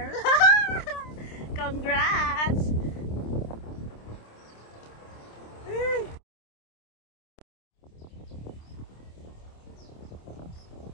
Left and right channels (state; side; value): late; right; 26 ms